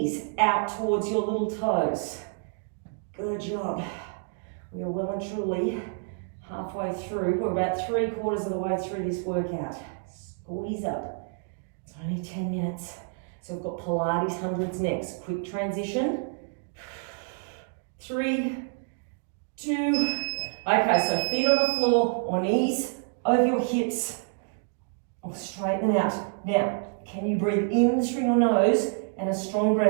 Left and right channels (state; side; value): silent; left; 55 dB below the other